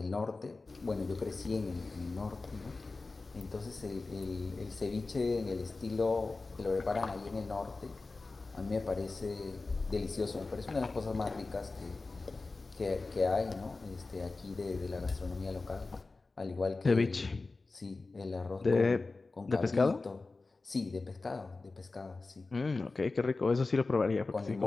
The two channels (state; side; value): quieter; right; 3.6 dB